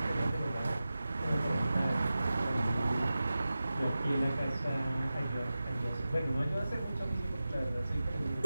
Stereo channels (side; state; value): both; inverted; correlation -0.95